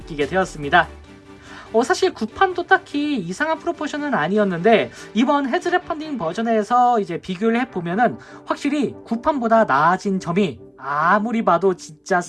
되었습니다. 사실 구판도 딱히 이상한 프로포션은 아니었는데 이번 헤즈랩 펀딩 버전에서 이제 비교를 해보면은 확실히 구판보다 나아진 점이 아무리 봐도 진짜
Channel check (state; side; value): identical; both; correlation 1.00